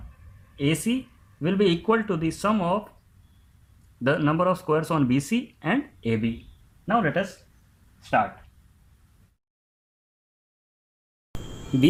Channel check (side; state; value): both; identical; correlation 1.00